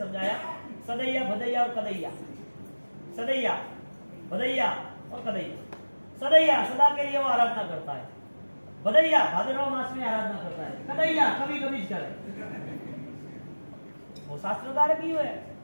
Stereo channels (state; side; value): inverted; both; correlation -1.00